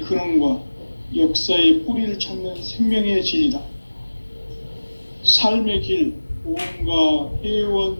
근원과 역사의 뿌리를 찾는 생명의 진리다. 삶의 길, 보험과 회원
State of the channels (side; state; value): both; inverted; correlation -1.00